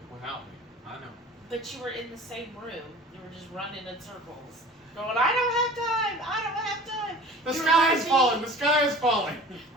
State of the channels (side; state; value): both; normal; correlation 0.43